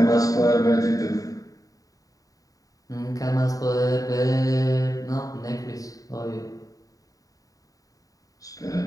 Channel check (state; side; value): late; right; 0.17 ms